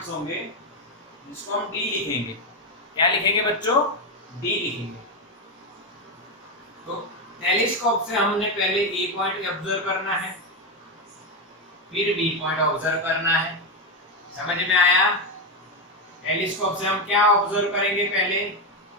होंगे, जिसको हम डी लिखेंगे। क्या लिखेंगे बच्चों? डी लिखेंगे। तो टेलीस्कोप से हमने पहले ए पॉइंट ऑब्जर्व करना है, फिर बी पॉइंट ऑब्जर्व करना है। समझ में आया? टेलीस्कोप से हम क्या ऑब्जर्व करेंगे? पहले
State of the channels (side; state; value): both; normal; correlation 0.08